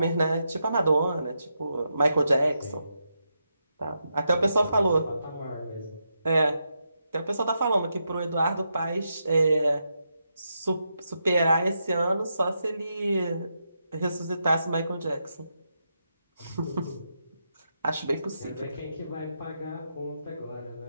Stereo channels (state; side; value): inverted; both; correlation -0.84